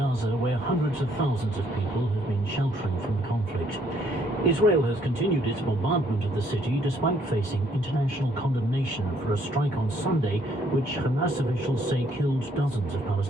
where hundreds of thousands of people have been sheltering from the conflict. Israel has continued its bombardment of the city despite facing international condemnation for a strike on Sunday, which Hamas officials say killed dozens of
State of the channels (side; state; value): both; normal; correlation 0.67